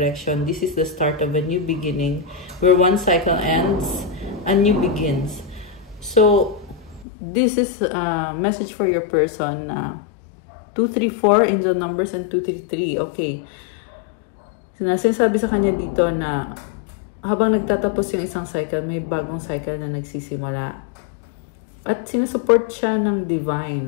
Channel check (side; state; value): right; drops out; at 7.1 s